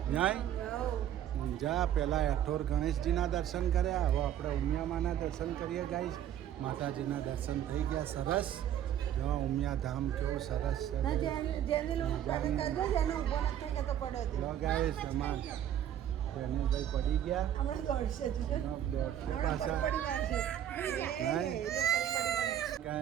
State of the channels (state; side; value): quieter; left; 10.7 dB